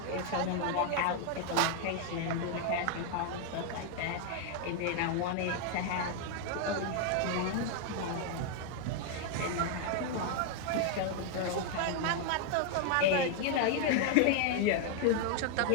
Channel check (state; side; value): different; both; correlation 0.00